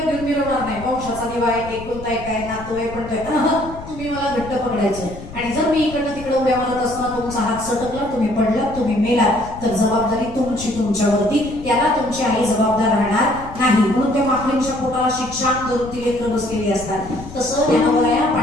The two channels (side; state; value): left; noise; rumble, 14 dB below the sound